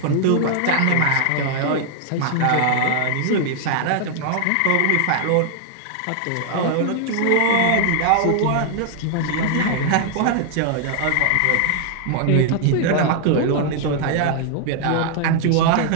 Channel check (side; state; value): both; different; correlation 0.00